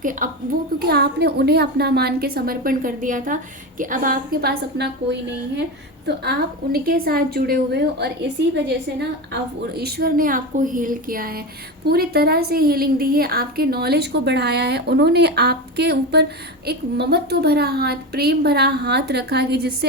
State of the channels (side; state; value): both; normal; correlation 0.21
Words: क्योंकि आपने उन्हें अपना मान के समर्पण कर दिया था कि अब आपके पास अपना कोई नहीं है, तो आप उनके साथ जुड़े हुए हो, और इसी वजह से ना आप ईश्वर ने आपको हील किया है, पूरी तरह से हीलिंग दी है, आपके नॉलेज को बढ़ाया है। उन्होंने आपके ऊपर एक ममत्व भरा हाथ, प्रेम भरा हाथ रखा कि